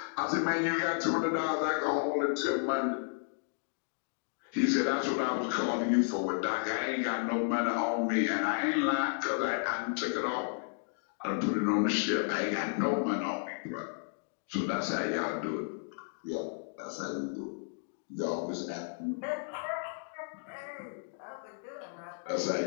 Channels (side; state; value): right; silent; digital silence